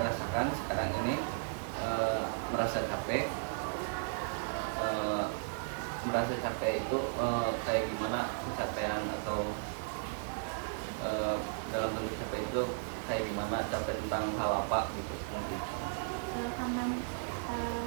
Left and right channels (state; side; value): silent; left; digital silence